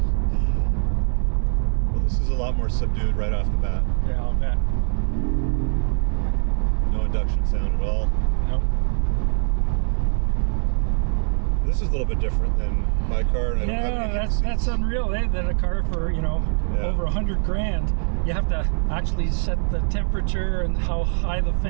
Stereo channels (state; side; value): silent; left; digital silence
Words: Well, this is a lot more subdued right off the bat. Yeah, I'll bet. No induction sound at all. Nope. This is a little bit different than my car. And I don't have any heated that's seats. unreal, eh? That a car for, over 100 grand, you have to actually set the temperature and how high the